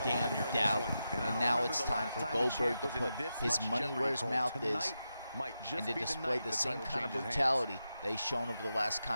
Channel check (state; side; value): inverted; both; correlation -0.88